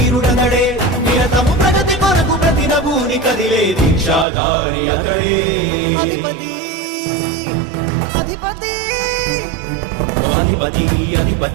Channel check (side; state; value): left; drops out; at 4.2 s